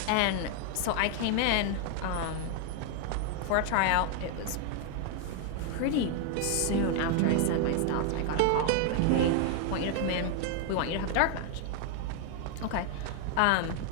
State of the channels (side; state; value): both; different; correlation 0.00